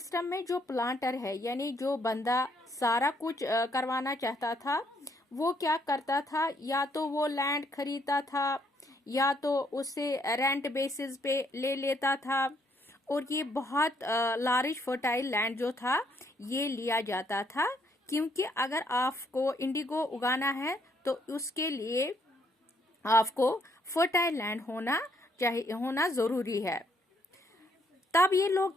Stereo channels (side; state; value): both; normal; correlation 0.71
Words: में जो प्लांटर है यानी जो बंदा सारा कुछ करवाना चाहता था, वो क्या करता था? या तो वो लैंड खरीदता था या तो उससे रेंट बेसिस पे ले लेता था। और ये बहुत लार्ज फर्टाइल लैंड जो था ये लिया जाता था, क्योंकि अगर आपको इंडिगो उगाना है तो उसके लिए आपको फर्टाइल लैंड होना जरूरी है। तब ये लोग